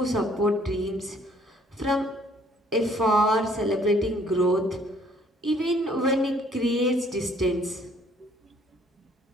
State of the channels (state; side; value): normal; both; correlation 0.61